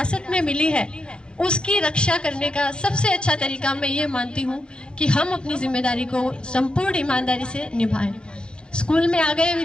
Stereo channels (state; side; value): late; right; 0.051 ms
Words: में मिली है उसकी रक्षा करने का सबसे अच्छा तरीका मैं ये मानती हूँ कि हम अपनी जिम्मेदारी को संपूर्ण ईमानदारी से निभाएं। स्कूल में आ गए,